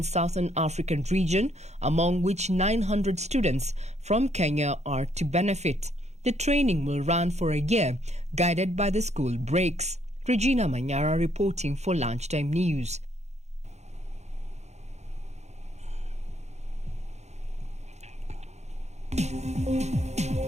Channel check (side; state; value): left; late; 0.32 ms